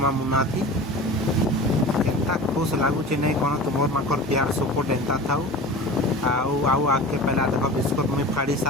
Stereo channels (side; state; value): both; normal; correlation 0.35